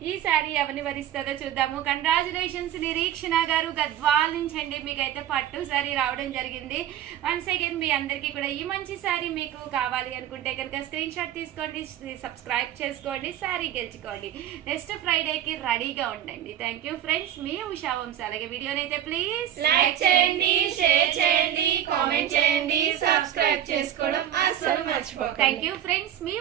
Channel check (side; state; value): left; quieter; 11.1 dB